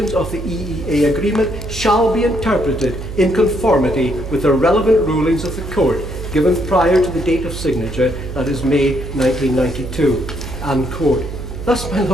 of the EEA agreement shall be interpreted in conformity with the relevant rulings of the Court, given prior to the date of signature, that is May 1992. End quote. Thus, my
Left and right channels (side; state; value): right; noise; hum, 8 dB below the sound